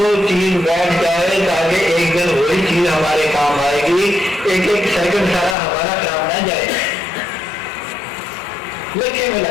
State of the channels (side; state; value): right; drops out; at 5.6 s